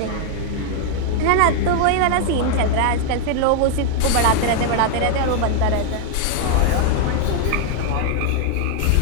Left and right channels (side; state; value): both; different; correlation 0.00